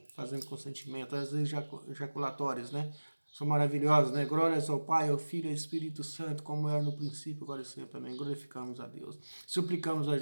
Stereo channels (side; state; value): both; inverted; correlation -1.00